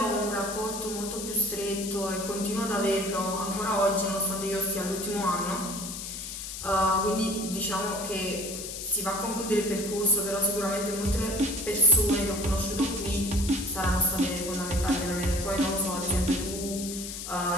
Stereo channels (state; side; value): noise; left; hiss, 8 dB below the sound